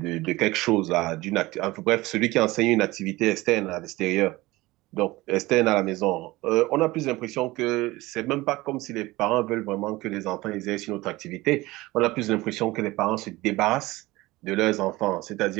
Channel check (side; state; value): left; quieter; 19.8 dB